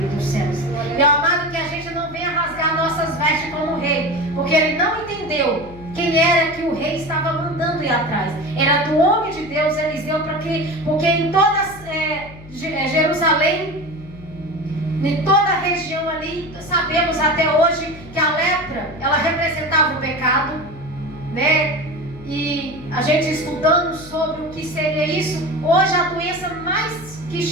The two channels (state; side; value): noise; left; hum, 18 dB below the sound